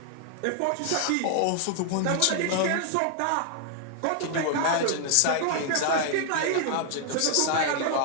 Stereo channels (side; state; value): both; different; correlation 0.00